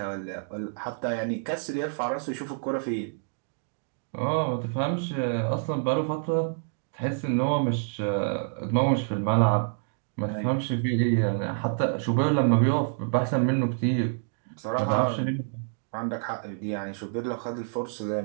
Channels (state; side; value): silent; left; digital silence